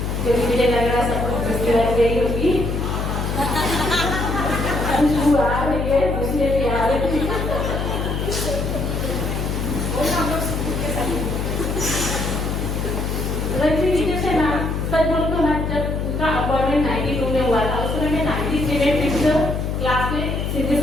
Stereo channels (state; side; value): noise; left; hum, 1 dB below the sound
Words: क्योंकि मुझे लग रहा है सब कुछ लग गई होगी। खुशबू आ रही है, मुझे भी आ रही है। रजनी से ना सच बोलो तो ना, जब उनका अपॉइंटमेंट 92 में हुआ था, उस समय मैं 93 में 5th क्लास में सिंधी